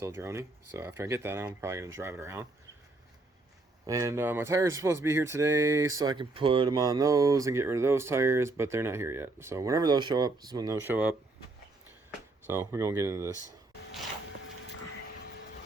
drony. So after I get that, I'm probably gonna drive it around. And my tires are supposed to be here today, so I can put them on those and get rid of those tires, but they're not here yet. So whenever those show up, this is when those show up. So we're gonna get into this.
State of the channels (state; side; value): quieter; left; 3.1 dB